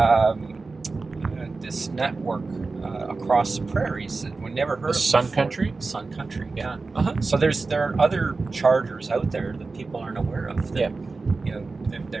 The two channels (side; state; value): left; quieter; 3.9 dB